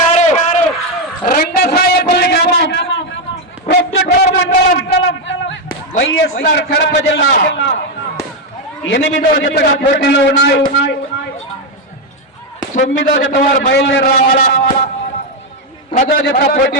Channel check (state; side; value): normal; both; correlation 0.04